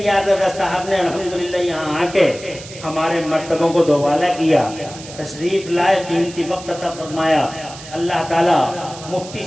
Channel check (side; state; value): right; noise; hiss, 15 dB below the sound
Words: رضا صاحب نے الحمدللہ یہاں آ کے ہمارے مرتبوں کو دوبالا کیا، تشریف لائے، قیمتی وقت عطا فرمایا۔ اللہ تعالیٰ مفتی